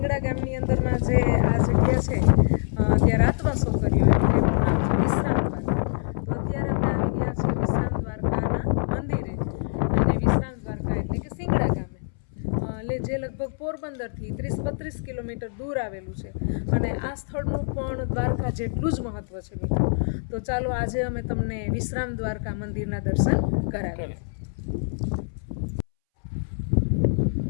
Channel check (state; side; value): silent; right; 62 dB below the other